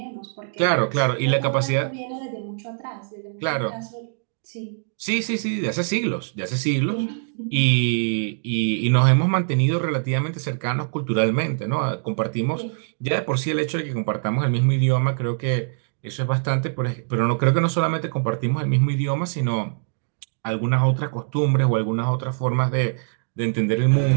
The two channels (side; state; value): left; silent; digital silence